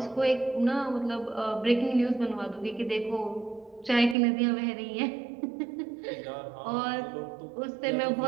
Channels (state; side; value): drops out; left; at 4.2 s